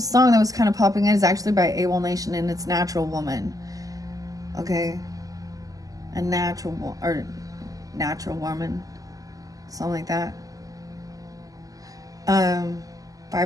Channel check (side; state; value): left; late; 0.17 ms